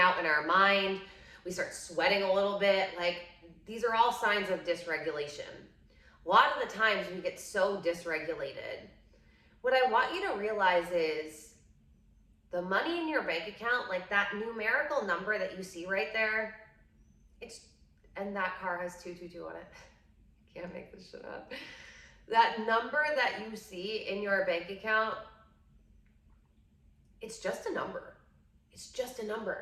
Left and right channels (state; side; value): identical; both; correlation 1.00